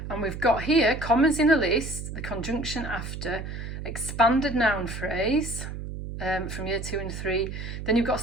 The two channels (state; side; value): noise; right; hum, 8 dB below the sound